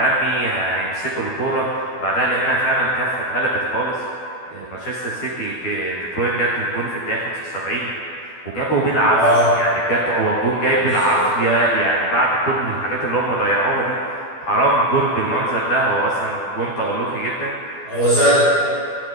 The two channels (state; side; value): late; right; 12 ms